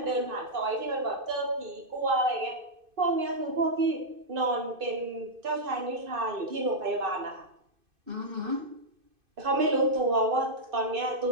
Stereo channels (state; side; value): late; left; 2.5 ms